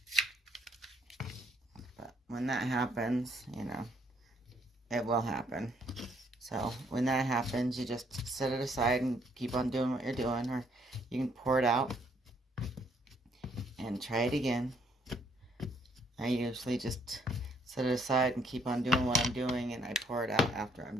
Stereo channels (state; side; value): normal; both; correlation 0.68